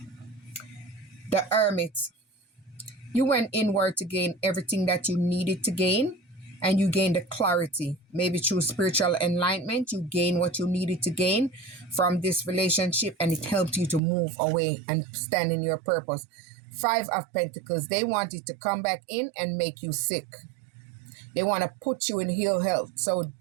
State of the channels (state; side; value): drops out; left; at 14.0 s